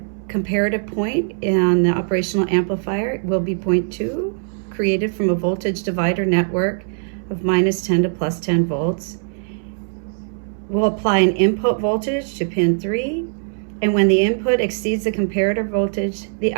comparative point in the operational amplifier will be point 2, created from a voltage divider network of -10 to +10 volts. We'll apply an input voltage to pin 3, and when the input exceeds the comparator voltage, the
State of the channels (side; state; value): left; silent; 65 dB below the other